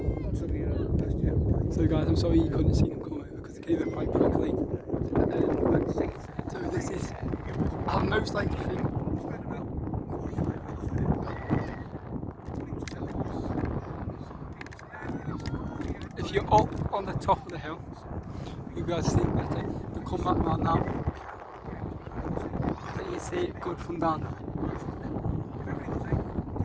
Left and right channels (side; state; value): both; identical; correlation 1.00